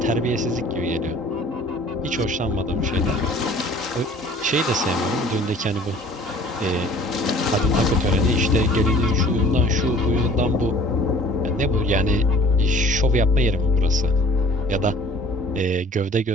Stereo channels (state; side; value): normal; both; correlation 0.50